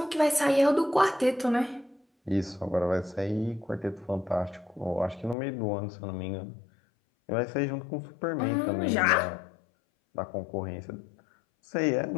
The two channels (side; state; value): right; drops out; at 5.4 s